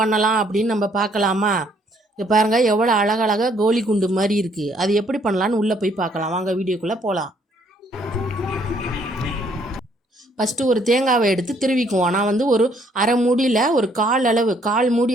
அப்படின்னு நம்ம பார்க்கலாமா? இங்கே பாருங்கள், எவ்வளோ அழகழகாக கோலி குண்டு மாதிரி இருக்குது. அது எப்படி பண்ணலான்னு உள்ளே போய் பார்க்கலாம். வாங்க, வீடியோக்குள்ளே போகலாம். ஃபஸ்ட்டு ஒரு தேங்காவை எடுத்து திருவிக்குவோம். நான் ஒரு அரை மூடியில் ஒரு கால் மூடி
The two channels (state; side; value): normal; both; correlation 0.66